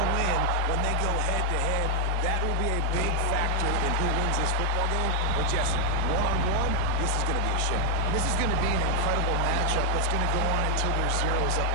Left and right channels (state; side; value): different; both; correlation 0.00